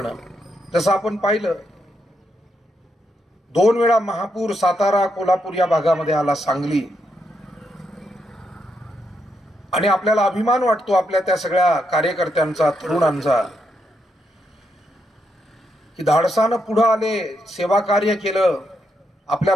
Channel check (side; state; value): both; normal; correlation 0.80